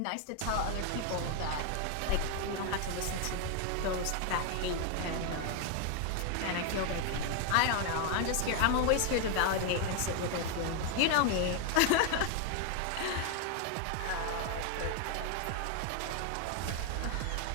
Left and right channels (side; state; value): both; different; correlation 0.01